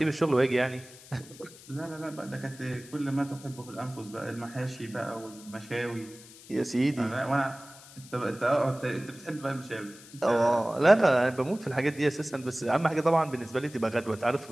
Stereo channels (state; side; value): noise; left; hiss, 20 dB below the sound